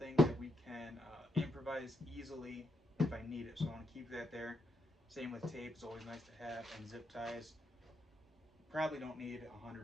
that we can improvise easily if I need it, so I want to keep that there. Same with tape, it's always nice to have, and zip ties. Probably don't need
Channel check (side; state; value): both; normal; correlation 0.80